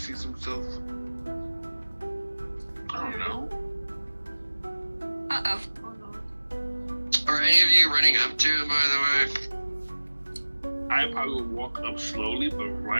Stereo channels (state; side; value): inverted; both; correlation -1.00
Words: himself. I don't know. Uh-oh. Oh no. Are any of you running up to him, by the way? I probably would walk up slowly, but